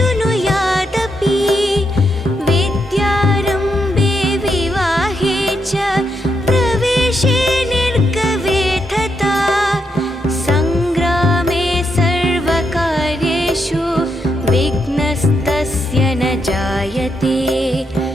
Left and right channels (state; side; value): normal; both; correlation 0.81